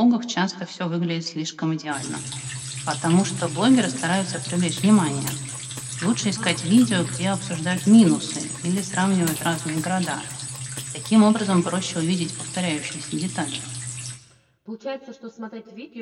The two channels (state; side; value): identical; both; correlation 1.00